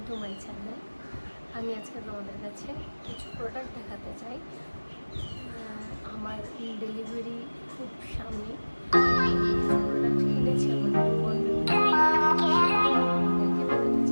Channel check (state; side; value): inverted; both; correlation -1.00